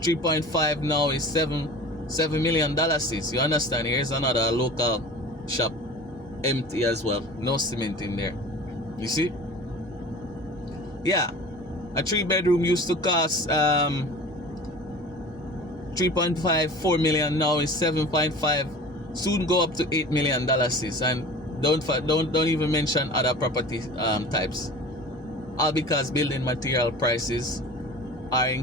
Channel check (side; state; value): both; normal; correlation 0.39